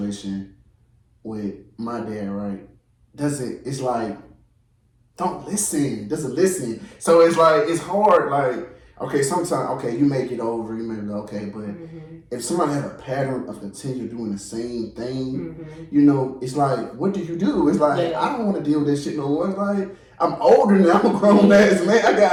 with my dad, right, doesn't listen. So it's like, it's hard. Like okay, sometimes, okay, you make it over, you make it okay, but if somebody has a pattern of continue doing the same thing, you know, it's like, what do you do? It's like, I don't want to deal with this shit no more. It's like, I'm older now, I'm a grown ass man. I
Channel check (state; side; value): identical; both; correlation 1.00